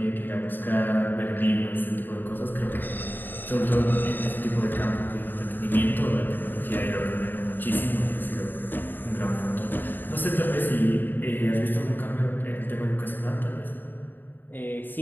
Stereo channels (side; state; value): right; late; 0.092 ms